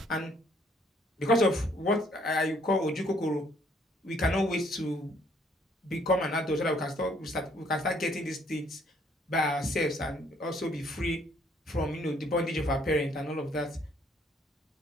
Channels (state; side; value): normal; both; correlation 0.65